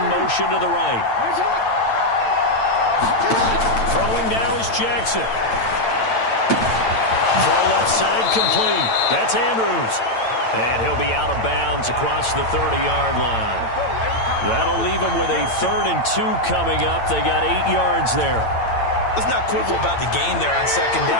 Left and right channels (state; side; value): late; right; 8.9 ms